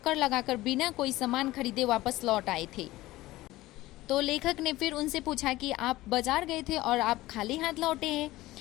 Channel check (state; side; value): quieter; right; 17.5 dB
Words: लगाकर बिना कोई सामान खरीदे वापस लौट आए थे। तो लेखक ने फिर उनसे पूछा कि आप बाजार गए थे और आप खाली हाथ लौटे हैं,